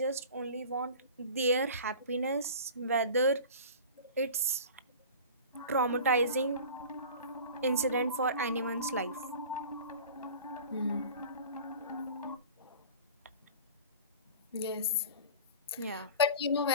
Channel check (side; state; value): both; inverted; correlation -0.39